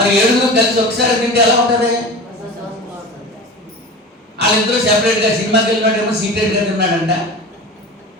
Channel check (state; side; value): normal; both; correlation 0.33